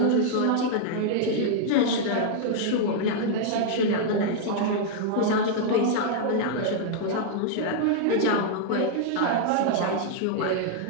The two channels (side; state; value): both; different; correlation 0.00